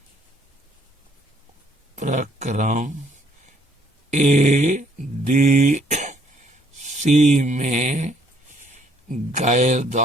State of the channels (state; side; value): normal; both; correlation 0.65